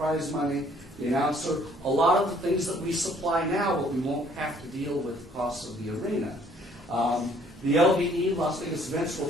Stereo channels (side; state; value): both; normal; correlation 0.60